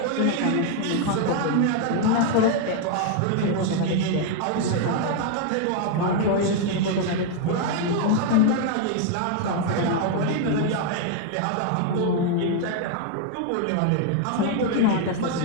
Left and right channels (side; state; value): both; different; correlation 0.01